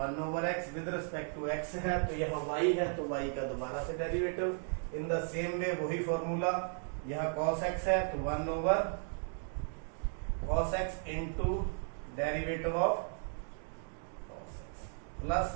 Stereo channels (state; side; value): silent; left; 54 dB below the other